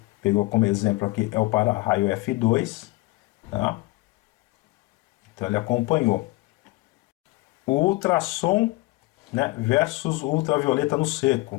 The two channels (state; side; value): quieter; right; 21.4 dB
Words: pegou como exemplo aqui, é o para-raio F2, tá? Então ele acompanhou. O ultrassom, né, versus o ultravioleta no